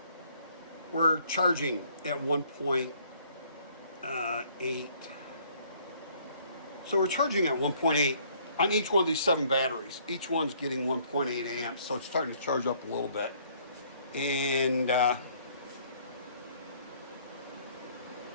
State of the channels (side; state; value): both; inverted; correlation -0.62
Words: we're charging at 1.8. So we're charging at 1.8 on each one of these 7 batteries. Each one's getting 1.8 amps, so it's starting to charge up a little bit. And